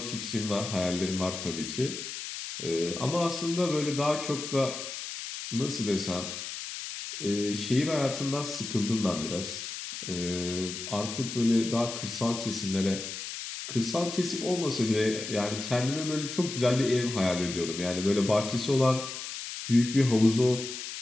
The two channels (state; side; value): noise; left; hiss, 7 dB below the sound